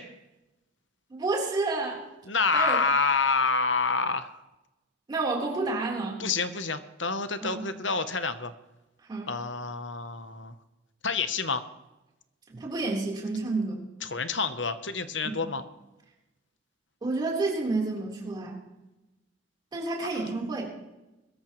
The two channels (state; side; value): normal; both; correlation 0.10